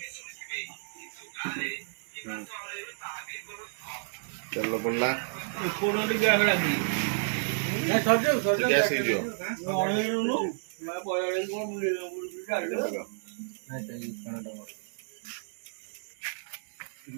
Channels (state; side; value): silent; left; digital silence